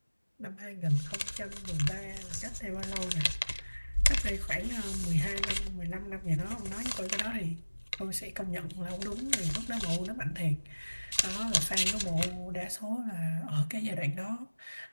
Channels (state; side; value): inverted; both; correlation -1.00